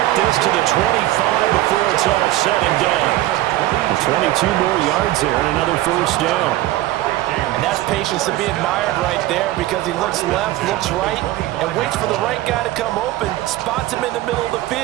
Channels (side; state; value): left; quieter; 15.9 dB